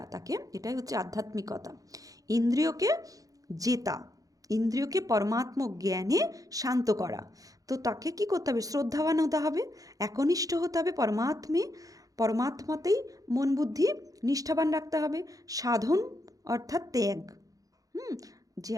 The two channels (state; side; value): late; left; 0.17 ms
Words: তাকে, এটাই হচ্ছে আধ্যাত্মিকতা। ইন্দ্রিয়কে জেতা, ইন্দ্রিয়কে পরমাত্ম জ্ঞানে শান্ত করা। তো তাকে কি করতে হবে, শ্রদ্ধাবান হতে হবে, একনিষ্ঠ হতে হবে পরমাত্মাতেই মন বুদ্ধি নিষ্ঠাবান রাখতে হবে। সাধন অর্থাৎ ত্যাগ, যে